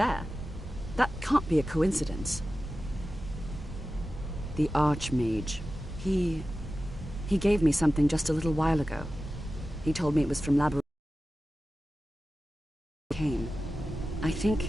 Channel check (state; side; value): normal; both; correlation 0.94